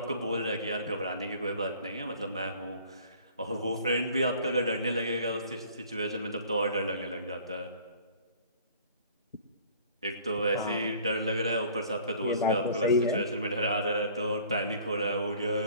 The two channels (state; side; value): inverted; both; correlation -0.51